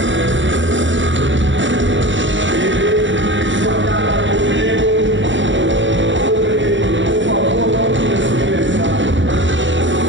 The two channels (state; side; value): late; left; 0.55 ms